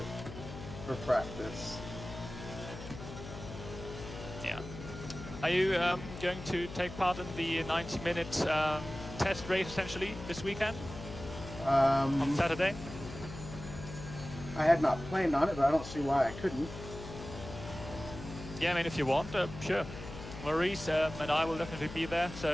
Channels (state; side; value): noise; left; hum, 11 dB below the sound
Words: for practice. Yeah. Are you going to take part in the 90-minute test race, essentially, this weekend? On Saturday? I had not planned on it, but I don't see why I couldn't. Yeah, I mean, if you want, sure. Maurice and I will definitely be there,